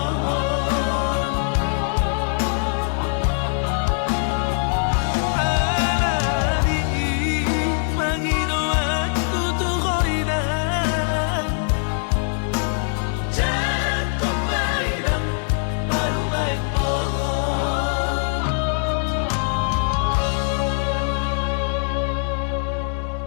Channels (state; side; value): silent; right; digital silence